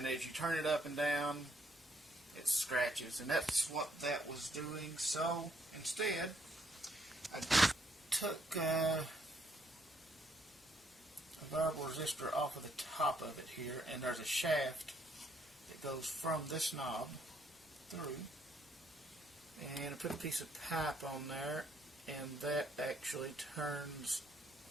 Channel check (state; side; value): normal; both; correlation 0.70